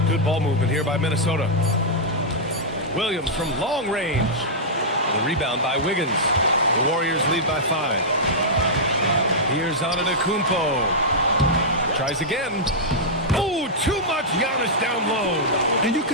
Good ball movement here by Minnesota. Williams from long range. The rebound by Wiggins. The Warriors lead by 5. Here's Antetokounmpo. Tries again. Oh, too much Giannis down low. And you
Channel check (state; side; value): normal; both; correlation -0.10